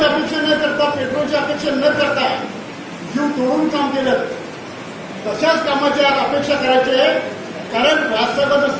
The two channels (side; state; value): both; identical; correlation 1.00